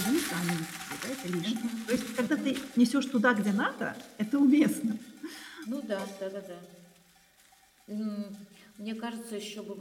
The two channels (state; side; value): identical; both; correlation 1.00